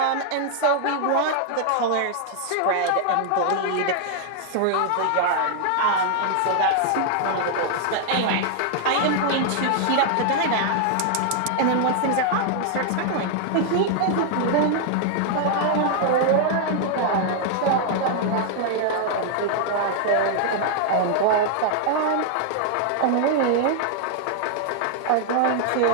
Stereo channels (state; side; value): different; both; correlation 0.00